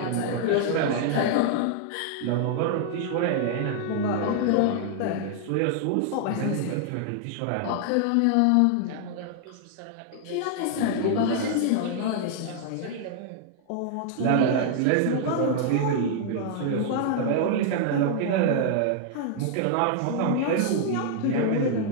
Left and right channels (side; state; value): both; different; correlation 0.00